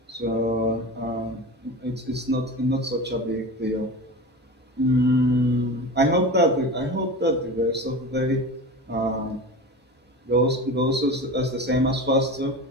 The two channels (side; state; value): both; normal; correlation 0.30